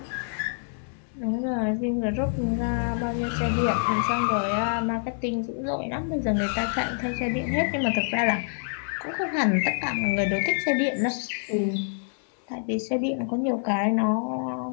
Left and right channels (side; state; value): right; silent; digital silence